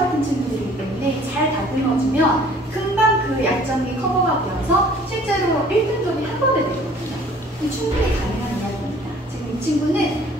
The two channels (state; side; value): normal; both; correlation 0.53